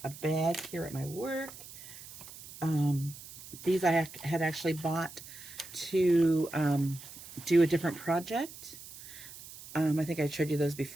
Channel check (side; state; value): right; noise; hiss, 16 dB below the sound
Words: a bag here at my work. These I had actually bought to do a different project. I think I showed you those